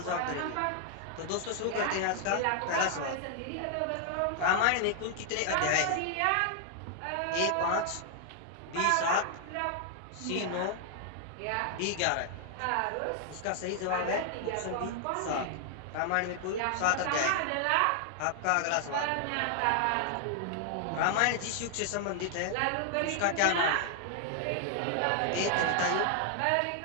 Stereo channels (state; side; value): different; both; correlation 0.00